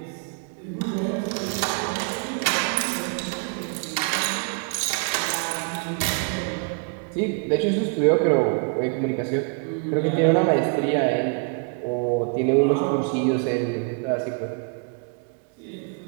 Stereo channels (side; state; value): left; quieter; 38.3 dB